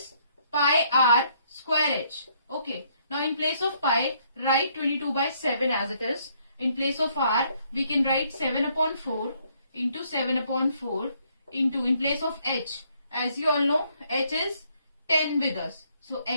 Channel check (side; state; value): both; inverted; correlation -0.69